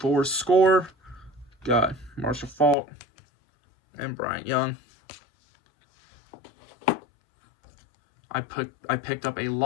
Score, got Marshall Faulk and Bryant Young. I picked up a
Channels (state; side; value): drops out; right; at 2.8 s